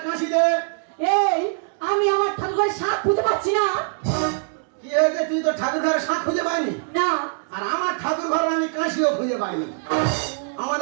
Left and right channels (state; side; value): silent; left; 64 dB below the other